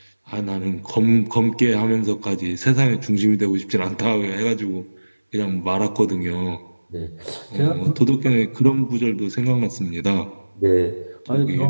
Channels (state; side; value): inverted; both; correlation -1.00